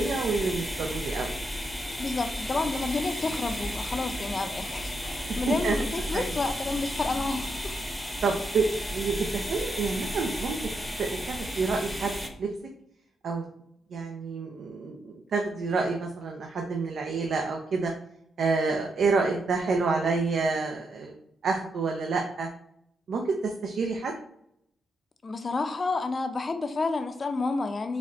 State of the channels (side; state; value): both; normal; correlation 0.81